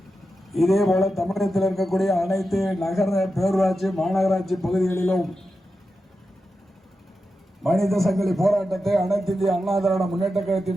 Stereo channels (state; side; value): normal; both; correlation 0.90